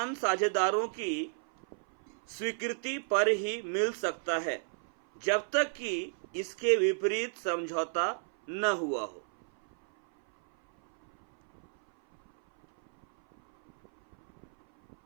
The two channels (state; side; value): silent; left; 56 dB below the other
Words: साझेदारों की स्वीकृति पर ही मिल सकता है, जब तक कि इसके विपरीत समझौता न हुआ हो।